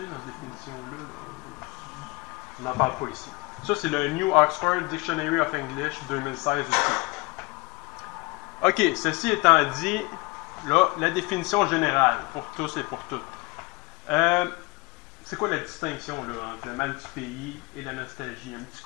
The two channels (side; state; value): right; quieter; 25.7 dB